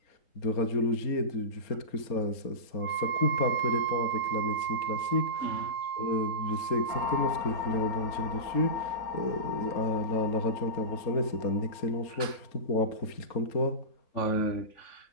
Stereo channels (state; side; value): late; right; 4.2 ms